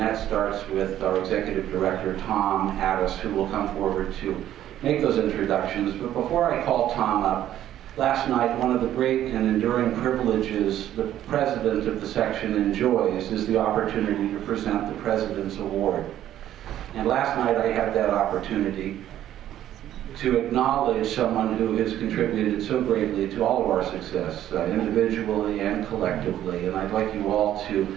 starts with our Executive Director, Tom Addis, who will come forward to make those introductions. But before I call Tom up, last night, one of the great and enduring privileges the president of the section enjoys is the opportunity to present the President's Award. And last night I had that opportunity to acknowledge someone who has contributed so greatly to all of our success, individually and collectively. And I'd like you all to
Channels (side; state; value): left; quieter; 12.0 dB